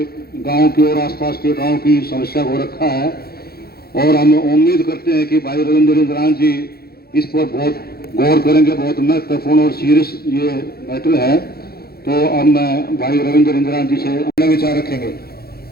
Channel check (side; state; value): right; late; 0.45 ms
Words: गांव की और आसपास के गांव की समस्या को रखा है और हम उम्मीद करते हैं कि भाई रविंद्र इंद्राज जी इस पर बहुत गौर करेंगे। बहुत महत्वपूर्ण और सीरियस ये मैटर है, तो अब मैं भाई रविंद्र इंद्राज जी से अपना विचार रखेंगे।